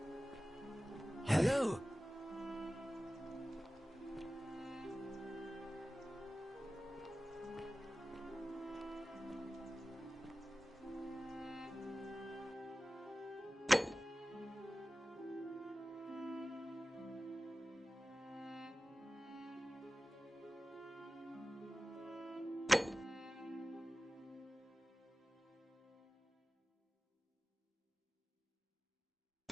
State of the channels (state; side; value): normal; both; correlation 0.96